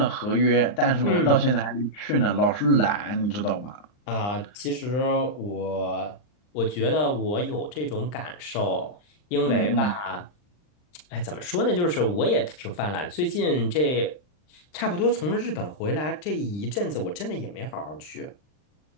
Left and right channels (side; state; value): right; late; 39 ms